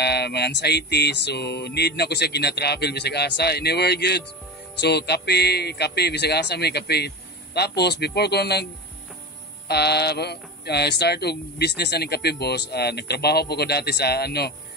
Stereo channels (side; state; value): both; normal; correlation 0.25